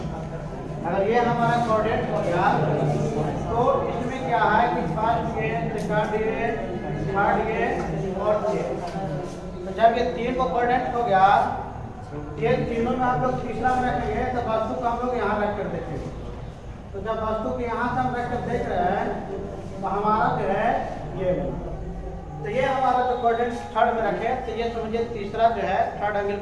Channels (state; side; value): identical; both; correlation 1.00